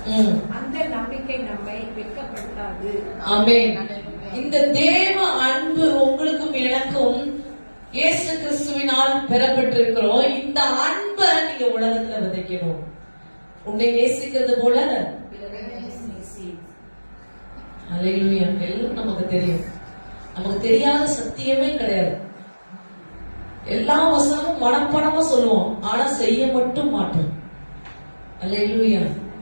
அந்த நம்பிக்கை நம்மை வெட்கப்படுத்தாது. ஆமென். இந்த தேவ அன்பு உங்களுக்கும் எனக்கும் இயேசு கிறிஸ்துவினால் பெறப்பட்டிருக்கிறோம். இந்த அன்பை நீங்க உலகத்துல விதைக்கணும். உன்னை நேசிக்கிறது போல அல்லேலூயா. எல்லாம் நமக்கு தெரியும். நமக்கு தெரியாத சத்தியமே கிடையாது. எல்லா வசனமும் மனப்படமா சொல்லுவோம், ஆனா செய்ய மட்டும் மாட்டோம். அல்லேலூயா.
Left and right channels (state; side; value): inverted; both; correlation -1.00